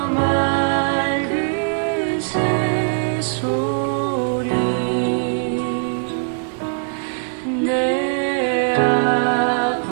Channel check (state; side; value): silent; left; digital silence